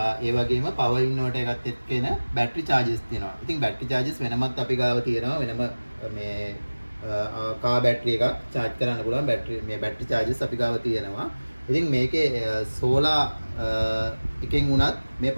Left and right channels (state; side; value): inverted; both; correlation -1.00